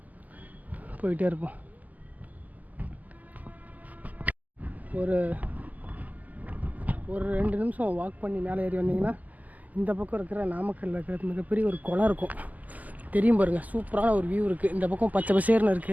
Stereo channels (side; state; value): left; late; 0.079 ms